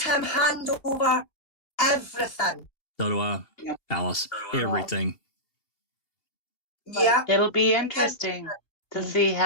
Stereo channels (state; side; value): late; right; 2.7 ms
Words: him hand over everything. So do I, Alice. Everything. Yeah. It'll be interesting to see